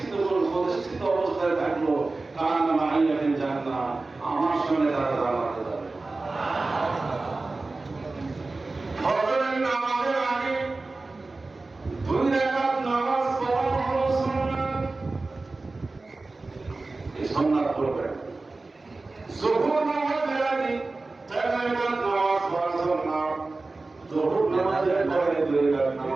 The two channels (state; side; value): quieter; left; 3.4 dB